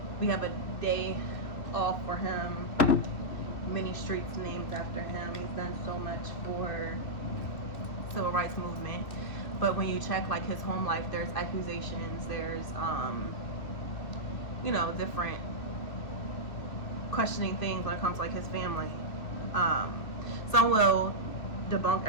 we have a day off for him, many streets named after him. He's done so much for civil rights movement. But when you check like his home life, there's accusations, there's different questioning things when it comes to like his family. Some will debunk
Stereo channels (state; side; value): late; right; 2.6 ms